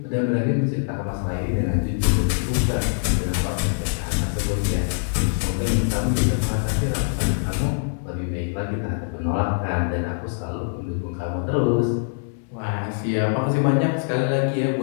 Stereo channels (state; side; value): silent; right; digital silence